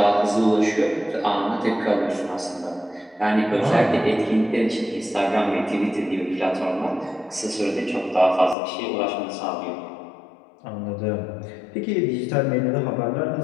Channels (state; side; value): drops out; right; at 8.6 s